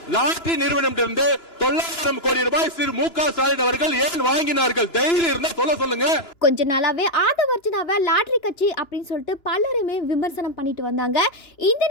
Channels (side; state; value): right; late; 2.9 ms